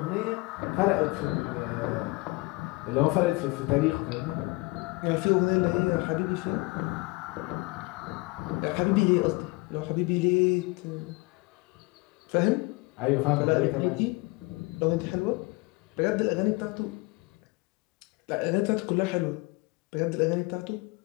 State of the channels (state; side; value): quieter; right; 24.8 dB